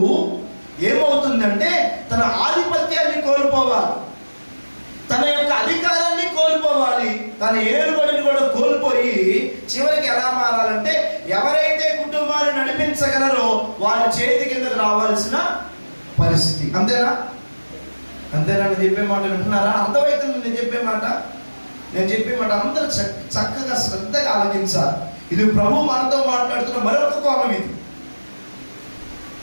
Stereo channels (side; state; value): both; inverted; correlation -1.00